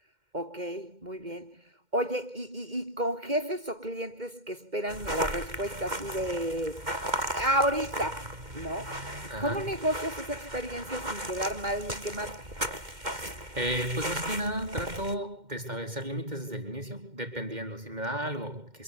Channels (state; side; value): late; left; 2.1 ms